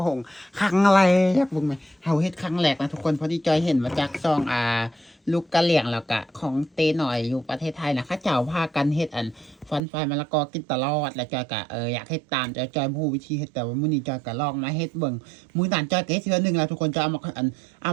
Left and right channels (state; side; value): drops out; left; at 9.8 s